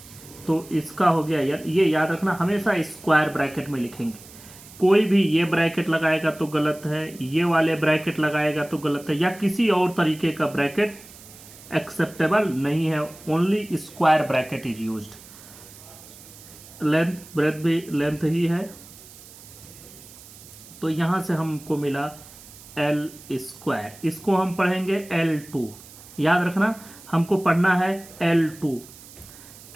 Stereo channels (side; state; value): right; noise; hiss, 19 dB below the sound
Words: तो इसका हो गया यार। ये याद रखना, हमेशा स्क्वायर ब्रैकेट में लिखेंगे। कोई भी ये ब्रैकेट लगाएगा तो गलत है, ये वाले ब्रैकेट लगाएगा तो गलत है, या किसी और तरीके का ब्रैकेट एक्सेप्टेबल नहीं है। Only square bracket is used. Length breadth भी लेंथ ही है, तो यहां से हमको मिला एल स्क्वायर, इसको हम पढ़ेंगे L2। याद रखना हमको पढ़ना है L2